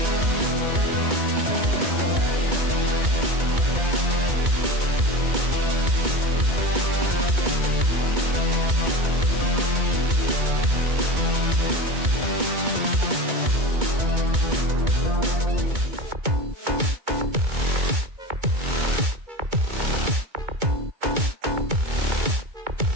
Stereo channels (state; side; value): late; left; 2.2 ms